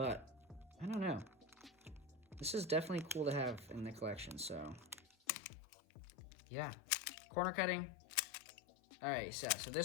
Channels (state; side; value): drops out; right; at 5.2 s